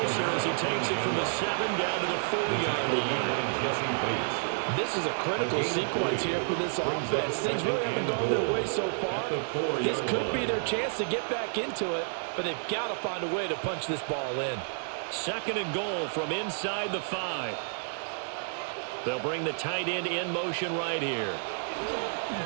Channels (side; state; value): left; silent; digital silence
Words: as he takes it from the 7 down to the 4-yard line. This is a critical sequence here for this offense. Things really haven't gone their way so far. This could be their chance to get back into it, but they've got to find a way to punch this ball in. 2nd and goal from inside the 5. They'll bring the tight end in motion right here.